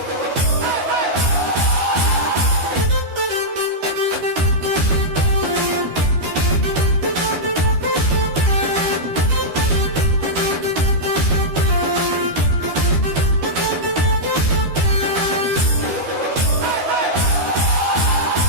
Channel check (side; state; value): left; late; 12 ms